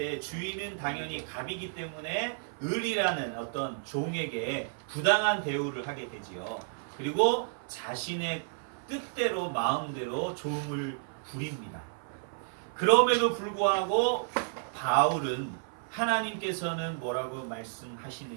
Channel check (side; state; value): left; silent; 57 dB below the other